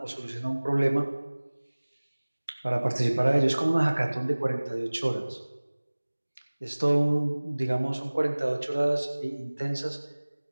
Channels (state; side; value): inverted; both; correlation -1.00